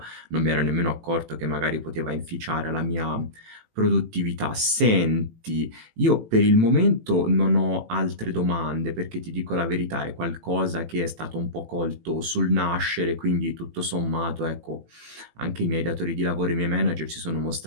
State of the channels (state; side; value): late; left; 18 ms